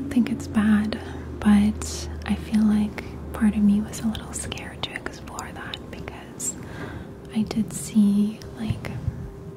think it's bad, but I feel like part of me was a little scared to explore that because I did see like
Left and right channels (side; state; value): both; identical; correlation 1.00